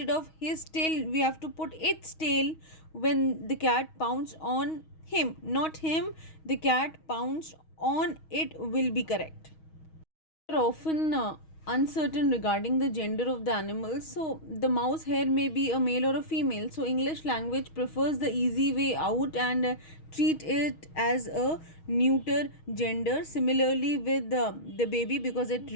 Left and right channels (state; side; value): late; right; 6.3 ms